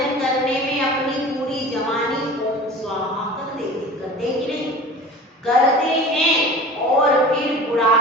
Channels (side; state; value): both; normal; correlation 0.38